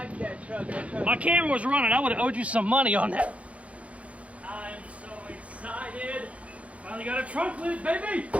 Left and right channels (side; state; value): left; late; 0.064 ms